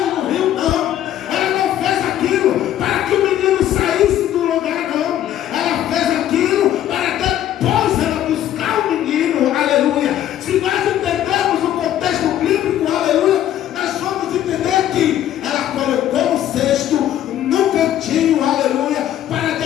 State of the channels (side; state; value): right; quieter; 11.7 dB